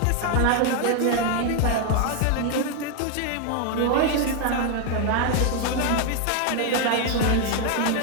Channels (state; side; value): different; both; correlation 0.01